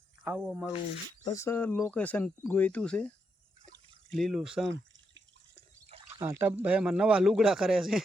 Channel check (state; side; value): normal; both; correlation 0.81